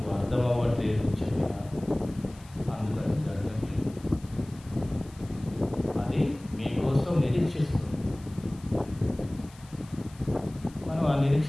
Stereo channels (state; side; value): noise; left; hiss, 24 dB below the sound